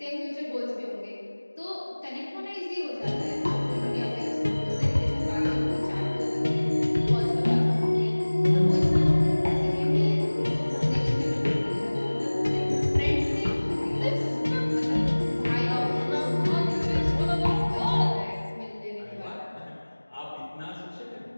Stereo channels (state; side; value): inverted; both; correlation -1.00